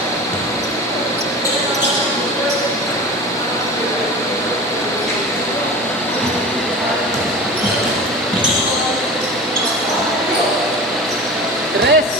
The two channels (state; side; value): normal; both; correlation 0.34